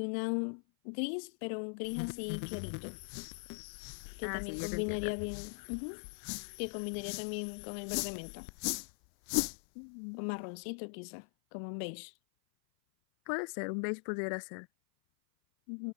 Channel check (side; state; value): right; silent; 51 dB below the other